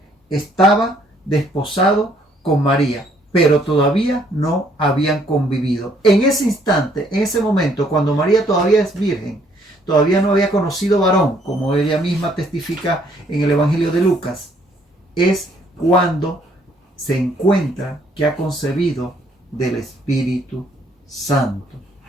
estaba desposado con María, pero todavía no habían convivido. En ese instante, en ese momento, cuando María todavía es virgen, todavía no había conocido varón, como ella misma testifica en el Evangelio de Lucas, es cuando se encuentra que ha concebido del Espíritu Santo.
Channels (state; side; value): normal; both; correlation 0.65